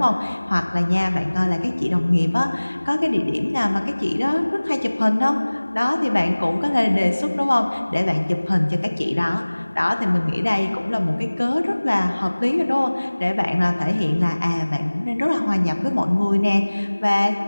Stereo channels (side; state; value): both; inverted; correlation -1.00